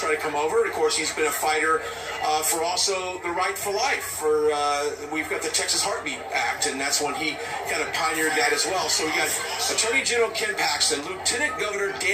try to come over. And of course, he's been a fighter for also the right for life. We've got the Texas Heartbeat Act, and that's when he kind of pioneered that as well. So we got Attorney General Ken Paxton. Lieutenant Governor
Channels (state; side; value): identical; both; correlation 1.00